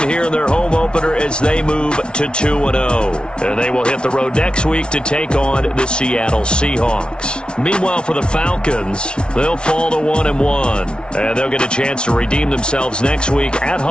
here in their home opener as they move to 2-0. And they will hit the road next week to take on the Seattle Seahawks. Meanwhile, for the Falcons, they'll fall to 1-1. And they'll get a chance to redeem themselves next week at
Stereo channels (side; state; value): right; late; 0.056 ms